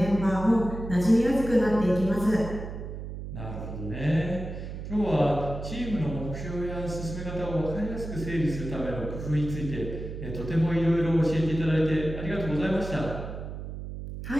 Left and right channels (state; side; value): noise; right; hum, 8 dB below the sound